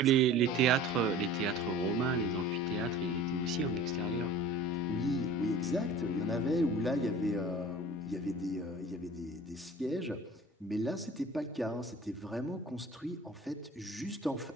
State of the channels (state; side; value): normal; both; correlation 0.42